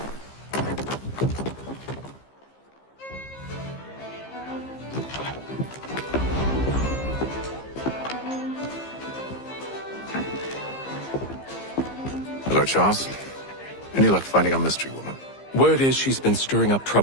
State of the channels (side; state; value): right; late; 15 ms